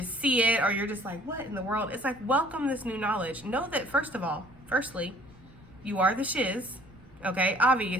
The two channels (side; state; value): right; noise; rumble, 25 dB below the sound